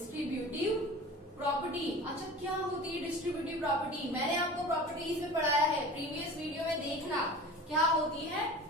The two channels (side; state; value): both; normal; correlation 0.37